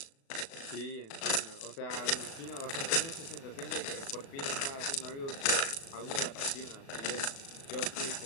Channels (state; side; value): late; right; 36 ms